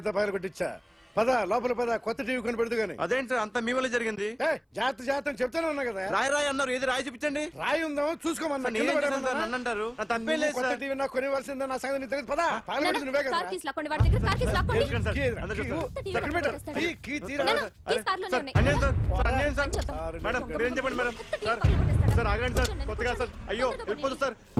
పగల కొట్టించా. పద లోపల పద, కొత్త టీవీ కొని పెడదు గాని. అదేంటి సార్ అంతా మీ వల్ల జరిగింది? జాగ్రత్త జాగ్రత్త అని చెప్తానే ఉన్నా కదా. రాయి రాయి అన్నారు, ఏది రాయి చూపించండి. రాయి ఉందా చూసుకోమన్నా. సార్, నేనేం చేశాను సార్? నన్ను అంటారు. నా తప్పేం లేదు కొత్త సార్. టీవీ నాకు కొనివ్వాల్సిందే. నా సంగతి నీకు తెలియదు. పద పగలగొట్టింది నువ్వే కదా. కార్ కీస్ లాక్కోండి, వాడి దగ్గర కార్ కీస్ లాక్కోండి. తెలుసు కదా సార్. అందరూ కీ చూస్తారు. ఇవ్వు. ఎక్కడ పెట్టు? కీ తీరా. నాన్న, కీస్ కార్లోనే సార్, ఉన్నాయి. అన్యాయం సార్. సార్, అన్యాయం సార్. చెప్తాం. మేడం మీరేం చెప్పండి మేడం. సార్ సార్ ఆగండి సార్, కొత్తగా సార్. అయ్యో వెళ్ళిపోతుంది సార్.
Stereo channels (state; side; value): identical; both; correlation 1.00